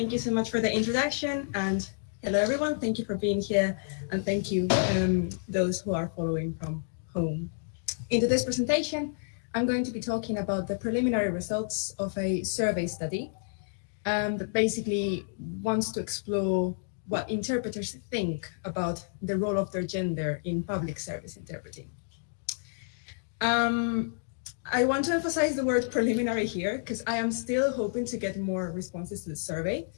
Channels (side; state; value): right; silent; digital silence